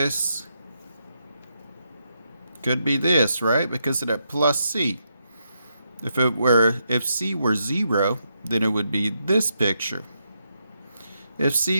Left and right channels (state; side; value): inverted; both; correlation -0.81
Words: could be this, right? Because of that plus c. If c were 0, then it would be this picture. If